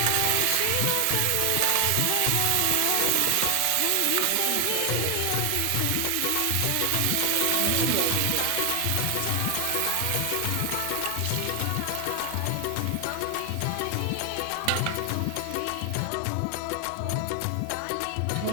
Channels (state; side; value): different; both; correlation 0.00